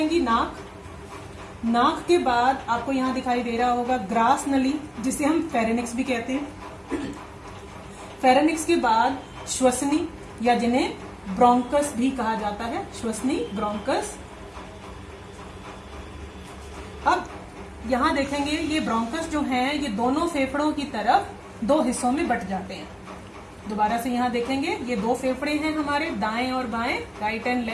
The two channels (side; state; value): both; identical; correlation 1.00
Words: नाक। नाक के बाद आपको यहाँ दिखाई दे रहा होगा ग्रास नली, जिसे हम फेरेनिक्स भी कहते हैं। फेरेनिक्स के बाद श्वसनी या जिन्हें ब्रोंकस भी कहा जाता है, श्वसनी ब्रोंकस। अब यहाँ देखेंगे ये ब्रोंकस जो हैं ये दोनों फेफड़ों की तरफ दो हिस्सों में बट जाते हैं। दोबारा से यहाँ देखेंगे ये दो फेफड़े हैं हमारे, दाएं और बाएं, राइट एंड